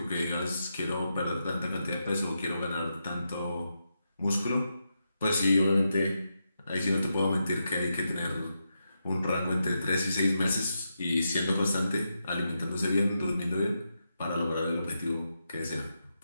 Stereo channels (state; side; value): inverted; both; correlation -0.86